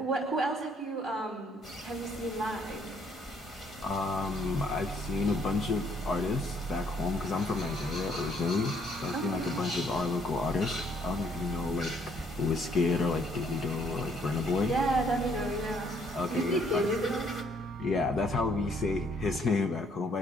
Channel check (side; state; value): both; normal; correlation 0.67